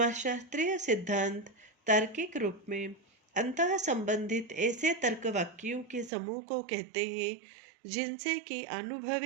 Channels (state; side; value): drops out; left; at 6.1 s